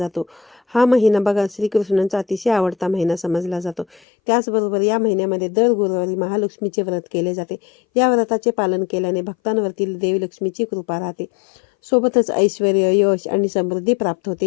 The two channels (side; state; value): right; drops out; at 4.0 s